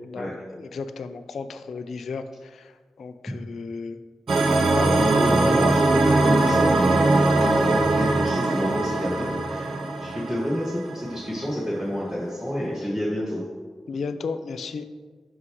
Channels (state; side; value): normal; both; correlation 0.89